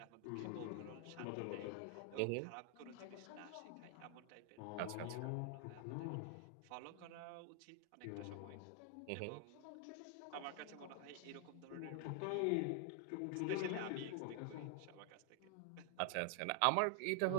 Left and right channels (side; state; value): both; different; correlation 0.00